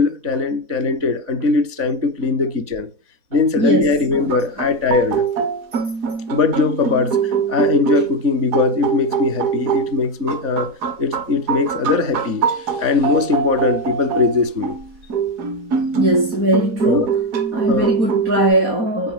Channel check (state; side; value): late; left; 4.1 ms